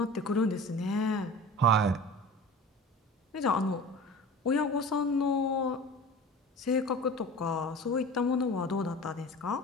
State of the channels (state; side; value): normal; both; correlation 0.37